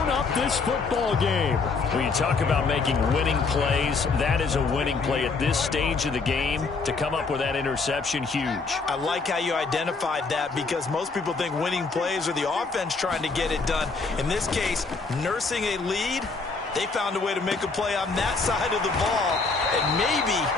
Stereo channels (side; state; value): right; quieter; 4.3 dB